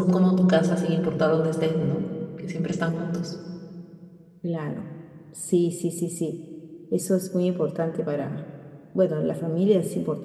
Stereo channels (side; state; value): both; identical; correlation 1.00